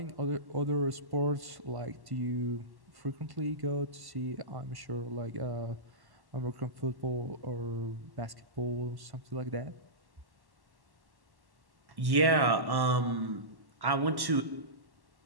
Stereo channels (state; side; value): late; left; 1.1 ms